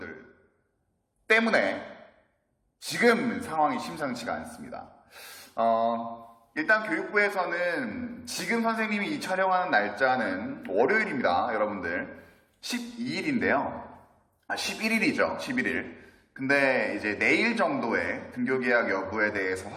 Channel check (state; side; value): identical; both; correlation 1.00